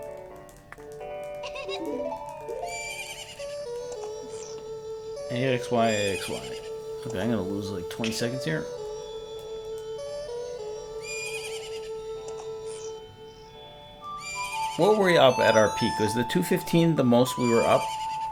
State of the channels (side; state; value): both; identical; correlation 1.00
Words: AXY, AXY. Okay, I'm gonna lose like 20 seconds here. What were we up at our peak? Was the 215 the most we were up?